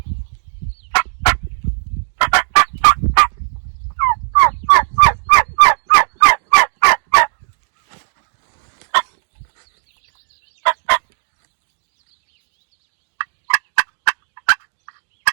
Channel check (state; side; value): silent; left; digital silence